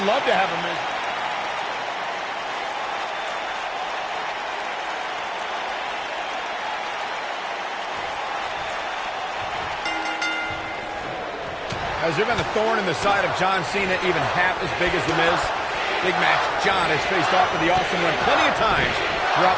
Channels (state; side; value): identical; both; correlation 1.00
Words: love to have a Miz. Has there been a thorn in the side of John Cena even half as big as The Miz? Big match. John has faced off with the Awesome One plenty of times